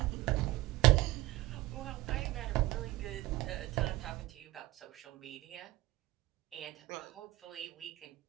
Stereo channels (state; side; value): quieter; left; 18.3 dB